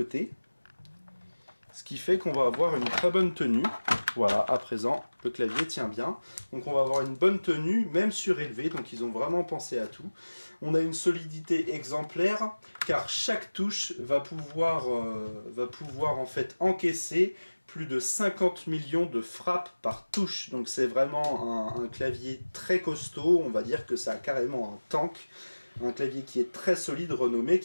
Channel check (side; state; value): both; inverted; correlation -1.00